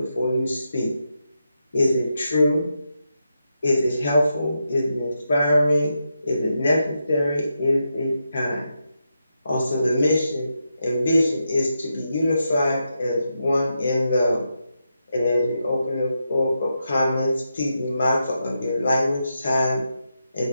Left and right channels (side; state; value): both; inverted; correlation -0.86